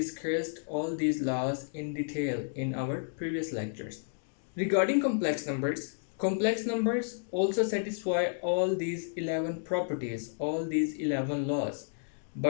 all these laws in detail in our previous lectures. Regarding complex numbers also satisfy all these 11 properties, all these 11 laws.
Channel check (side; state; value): right; silent; digital silence